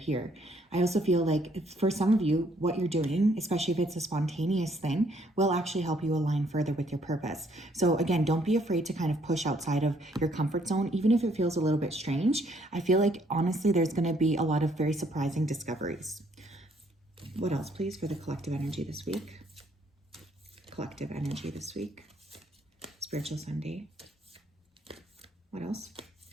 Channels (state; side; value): normal; both; correlation 0.67